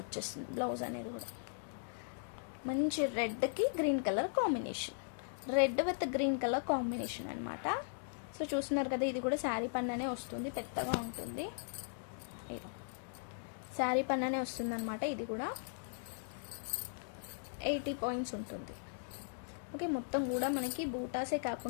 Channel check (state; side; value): silent; right; digital silence